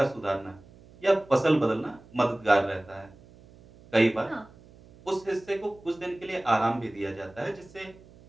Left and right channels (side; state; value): right; noise; hum, 24 dB below the sound